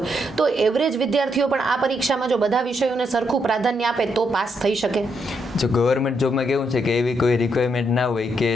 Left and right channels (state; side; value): normal; both; correlation 0.78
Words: તો એવરેજ વિદ્યાર્થીઓ પણ આ પરીક્ષામાં જો બધા વિષયોને સરખું પ્રાધાન્ય આપે તો પાસ થઈ શકે? જો ગવર્મેન્ટ જોબમાં કેવું છે કે એવી કોઈ રિક્વાયરમેન્ટ ના હોય કે